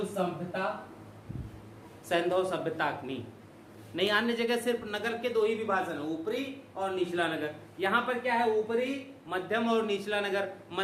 सभ्यता सैंधव सभ्यता की। नहीं, अन्य जगह सिर्फ नगर के 2 ही विभाजन है, ऊपरी और निचला नगर। यहाँ पर क्या है? ऊपरी, मध्यम और निचला नगर।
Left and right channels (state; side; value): identical; both; correlation 1.00